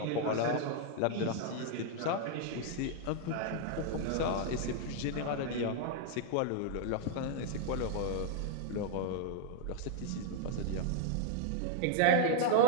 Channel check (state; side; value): different; both; correlation 0.00